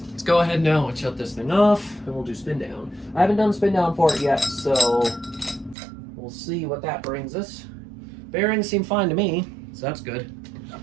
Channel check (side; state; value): left; drops out; at 5.8 s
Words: let's go ahead now and shut this thing off, and we'll do spin down. I haven't done spin down for it yet, so we'll see what that brings us. Bearings seem fine to me, so that's good.